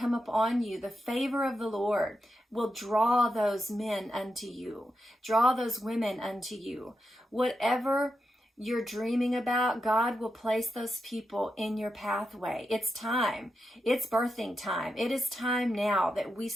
up on you. The favor of the Lord will draw those men unto you, draw those women unto you. Whatever you're dreaming about, God will place those people in your pathway. It's time. It's birthing time. It is time now that we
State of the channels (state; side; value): normal; both; correlation 0.87